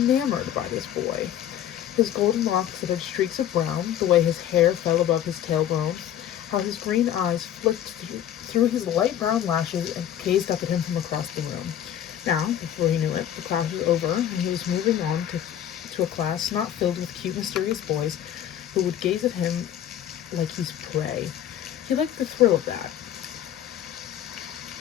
by this boy. His golden locks that had streaks of brown, the way his hair fell above his tailbone, how his green eyes flicked through his light brown lashes and gazed up at him from across the room. Now, before he knew it, the class was over, and he was moving on to a class not filled with cute, mysterious boys who would gaze at him like he's prey. He liked the thrill of that.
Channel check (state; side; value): quieter; right; 10.7 dB